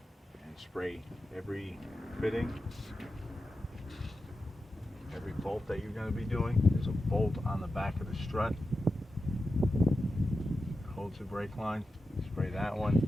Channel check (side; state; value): both; normal; correlation 0.91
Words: and spray every fitting, every bolt that you're going to be doing. There's a bolt on the back of the strut, holds the brake line, spray that one.